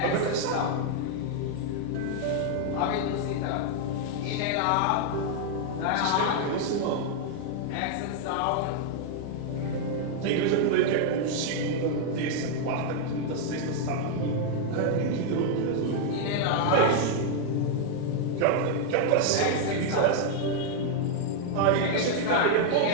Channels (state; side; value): different; both; correlation 0.00